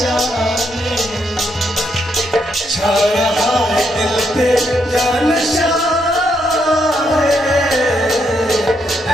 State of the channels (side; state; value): both; normal; correlation 0.77